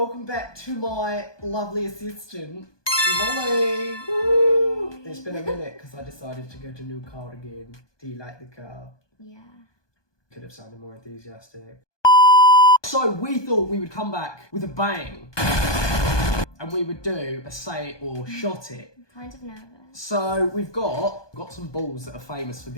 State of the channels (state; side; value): late; right; 1.2 ms